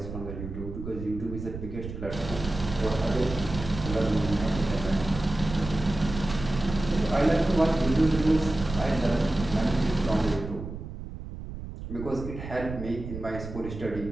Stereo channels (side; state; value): right; noise; rumble, 9 dB below the sound